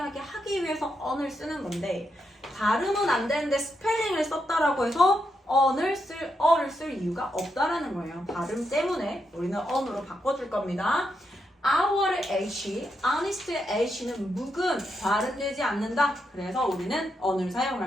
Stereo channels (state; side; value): normal; both; correlation 0.82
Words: 하기 위해서 언을 쓰는 건데 발음은 안 되는데 스펠링을 썼다라고 해서 어를 쓸 이유가 없다라는 거예요. 발음 때문에 우리는 언으로 바꿔줄 겁니다. Our H, honest의 H는 묵음, 발음되지 않는다. 그래서 우리는 언을